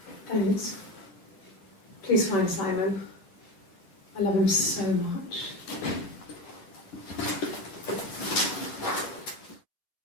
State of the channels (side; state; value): right; late; 10 ms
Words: Thanks. Please find Simon. I love him so much.